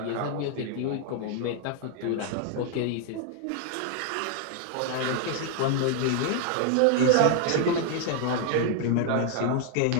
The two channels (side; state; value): both; different; correlation 0.00